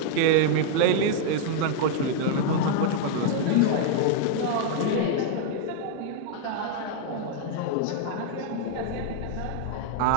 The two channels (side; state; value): both; different; correlation 0.00